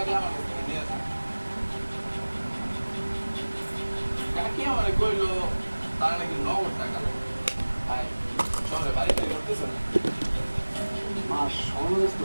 আমার কাছ থেকে নিয়ে যান কাকি আমারে কইলো তার নাকি নগদ টাকা লাগে ভাই শহরে বাড়িতে করতেছে না মা সমাবেশ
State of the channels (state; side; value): inverted; both; correlation -1.00